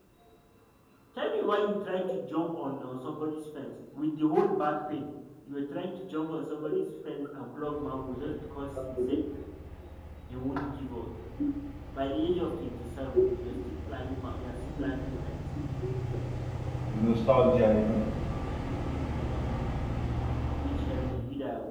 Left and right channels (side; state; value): both; identical; correlation 1.00